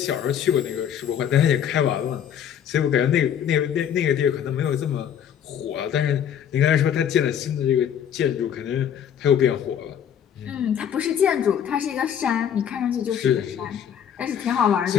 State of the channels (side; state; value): right; quieter; 9.0 dB